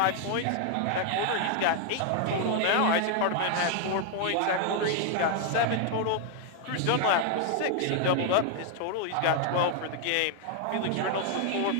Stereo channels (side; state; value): both; different; correlation 0.00